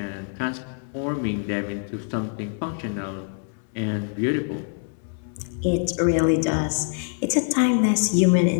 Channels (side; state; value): right; silent; 57 dB below the other